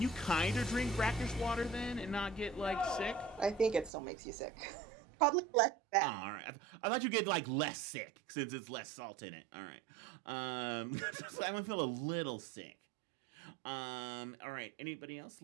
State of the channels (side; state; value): left; drops out; at 3.9 s